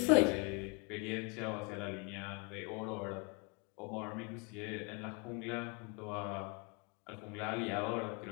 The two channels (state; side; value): quieter; right; 31.9 dB